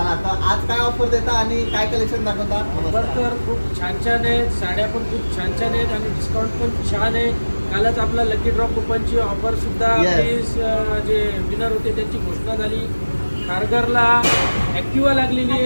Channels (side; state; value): both; inverted; correlation -1.00